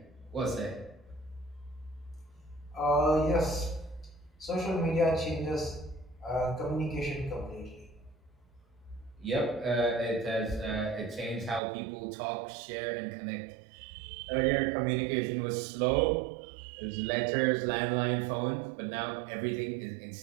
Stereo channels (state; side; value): drops out; left; at 11.6 s